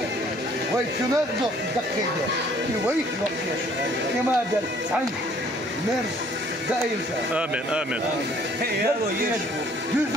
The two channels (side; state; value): both; normal; correlation 0.59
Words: وي كنا دقيقة وي كما دل عن مرز دائم آمين آمين